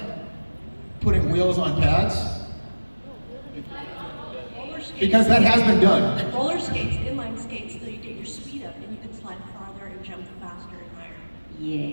putting wheels on pads? Roller skates. Because that has been done. Roller skates, inline skates, so you get your speed up and you can slide farther and jump faster and higher.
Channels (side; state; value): both; inverted; correlation -1.00